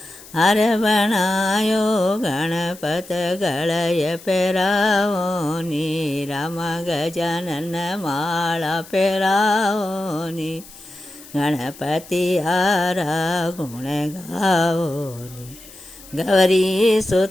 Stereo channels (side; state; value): left; noise; hiss, 19 dB below the sound